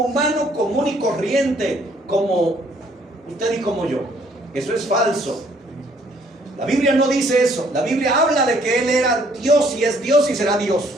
común y corriente, como usted y como yo. Eso es falso. La Biblia no dice eso. La Biblia habla de que él era Dios y es Dios y será Dios.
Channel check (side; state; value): both; normal; correlation 0.64